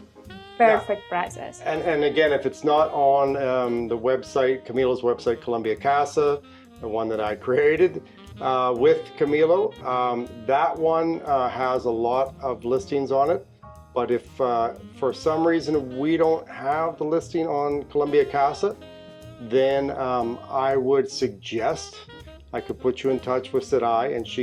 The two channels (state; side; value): identical; both; correlation 1.00